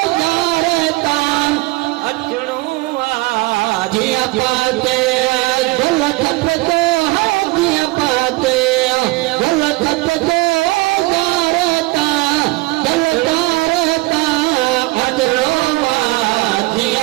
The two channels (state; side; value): quieter; left; 22.3 dB